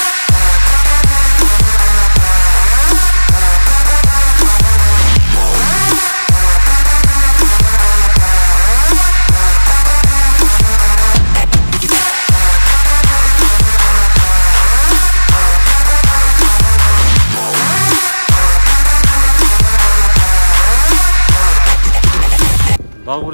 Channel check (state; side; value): inverted; both; correlation -1.00